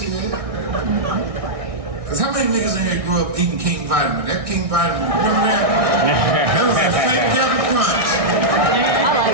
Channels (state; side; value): late; left; 1.6 ms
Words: Cause how many niggas in there grew up eating King Vitamin? That King Vitamin, remember that? That was that fake Captain Crunch.